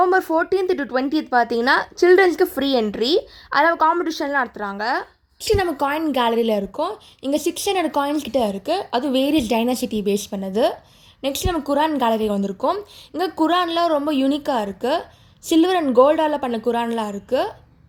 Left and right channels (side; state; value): both; identical; correlation 1.00